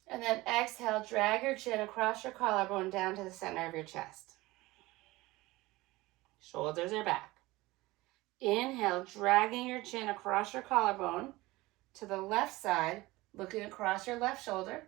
And then exhale, drag your chin across your collarbone down to the center of your chest. Shoulders are back. Inhale, dragging your chin across your collarbone to the left side, looking across your left shoulder.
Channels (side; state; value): left; quieter; 20.0 dB